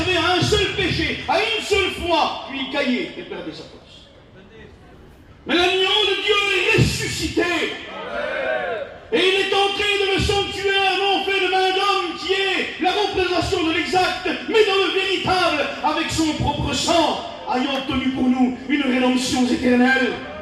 à un seul péché, à une seule fois, puis il caillait et perdait sa place. Mais l'agneau de Dieu est ressuscité. Et il est entré dans le sanctuaire, non fait de main d'homme, qui est la représentation de l'exact, mais dans le véritable, avec son propre sang, ayant obtenu pour nous une rédemption éternelle.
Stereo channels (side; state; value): both; identical; correlation 1.00